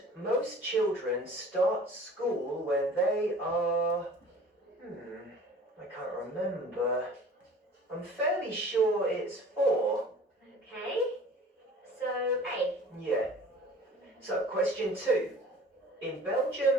most children start school when they are... I can't remember. I'm fairly sure it's 4. Okay. So, A. Yeah. So, question 2. In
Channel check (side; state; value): both; normal; correlation 0.45